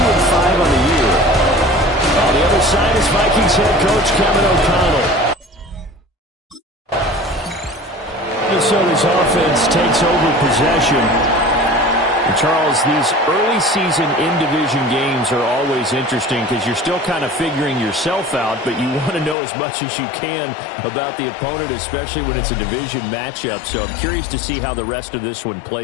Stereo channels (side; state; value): right; drops out; at 19.4 s